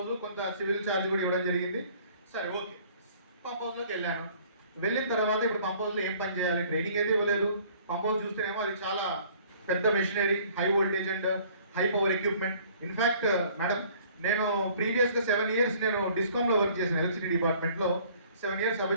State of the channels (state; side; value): inverted; both; correlation -0.55